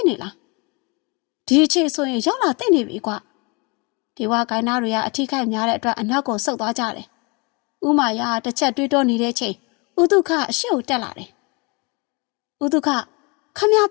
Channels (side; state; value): right; quieter; 29.6 dB